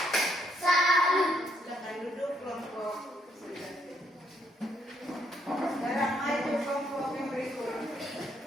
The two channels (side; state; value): both; normal; correlation 0.73